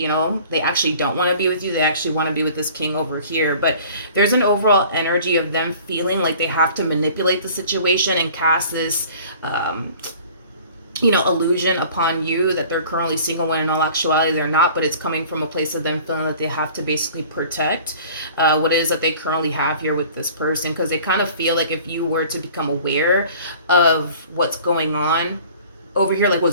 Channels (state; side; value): inverted; both; correlation -0.48